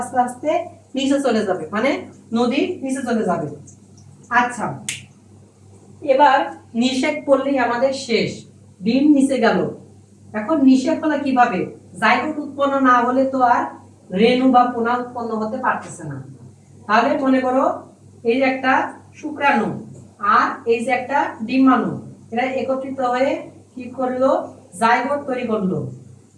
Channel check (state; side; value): identical; both; correlation 1.00